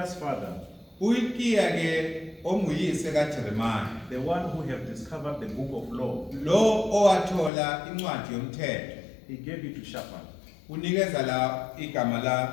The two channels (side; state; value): right; drops out; at 7.5 s